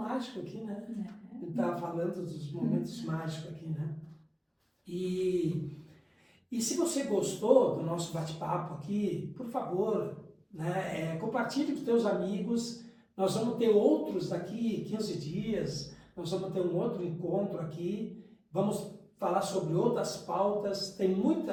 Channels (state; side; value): identical; both; correlation 1.00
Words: aqui, né? A gente estava falando dos momentos mágicos aqui, né? E se você gostou do nosso bate-papo aqui, por favor, né, compartilhe com os teus amigos. Nós vamos ter outros daqui 15 dias, nós vamos ter um outro encontro aqui, vamos falar sobre outras pautas, tem